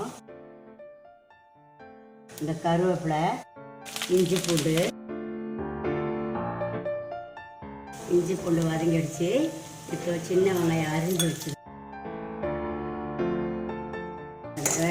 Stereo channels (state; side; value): identical; both; correlation 1.00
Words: இந்த கருவேப்பிலை, இஞ்சி பூண்டு வதங்கிடுச்சு. இப்போ சின்ன வெங்காயம் அரிஞ்சு வச்சு